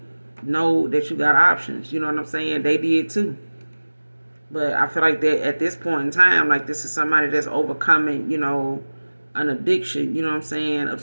know that you got options. You know what I'm saying? They did too. But I feel like that at this point in time, like this is somebody that's overcoming, an addiction, you know what I'm saying,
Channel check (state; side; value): inverted; both; correlation -1.00